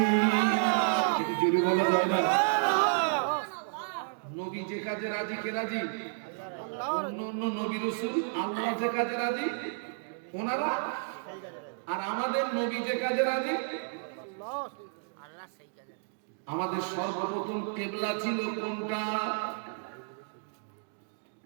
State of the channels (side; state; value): left; silent; digital silence